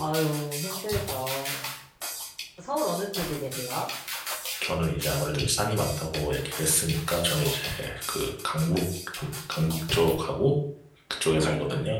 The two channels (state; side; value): identical; both; correlation 1.00